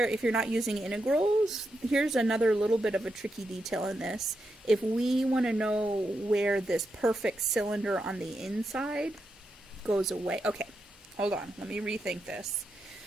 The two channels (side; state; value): both; normal; correlation 0.85